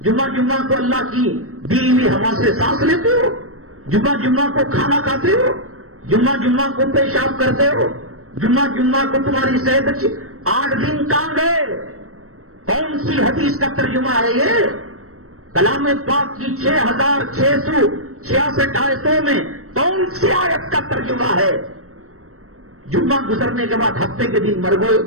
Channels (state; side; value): late; left; 0.64 ms